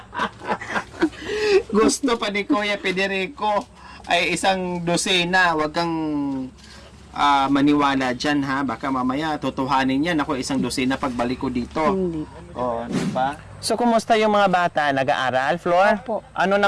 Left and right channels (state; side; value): identical; both; correlation 1.00